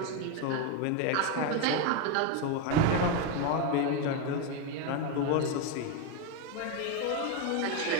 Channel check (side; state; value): both; different; correlation 0.02